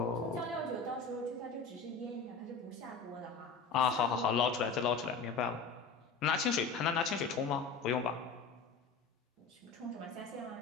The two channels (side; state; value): right; quieter; 4.9 dB